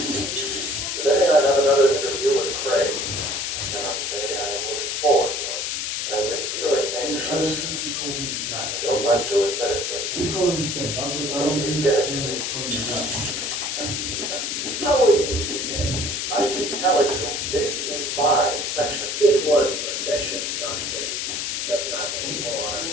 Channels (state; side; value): noise; left; hiss, 2 dB below the sound